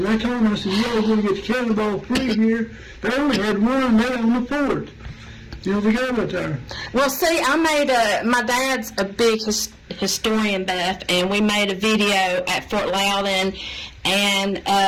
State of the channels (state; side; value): identical; both; correlation 1.00